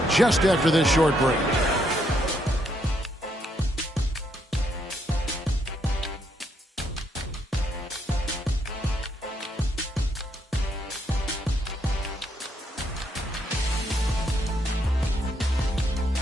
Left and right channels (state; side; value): normal; both; correlation 0.75